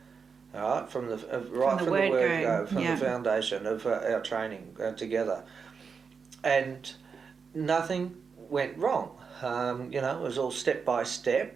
All right, from the word go, from the foundation of our training together, and nothing went wrong. It was all step by step,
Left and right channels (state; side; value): quieter; left; 5.7 dB